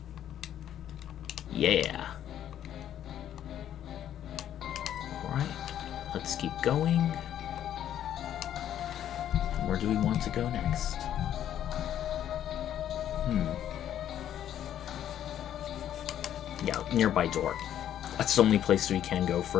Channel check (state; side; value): quieter; right; 10.8 dB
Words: Yeah. Alright, let's keep going. Where do we want to go next? Yeah, nearby door. That's the only place we can go